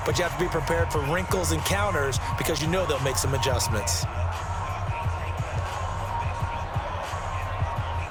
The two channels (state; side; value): identical; both; correlation 1.00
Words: but you have to be prepared for wrinkles and counters because you know they'll make some adjustments.